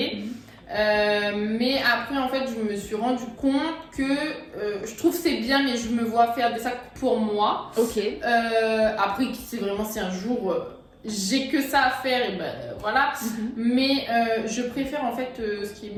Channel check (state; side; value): identical; both; correlation 1.00